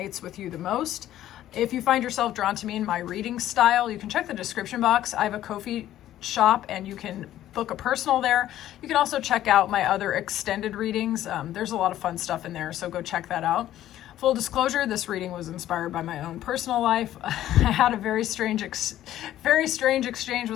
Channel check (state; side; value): quieter; right; 12.9 dB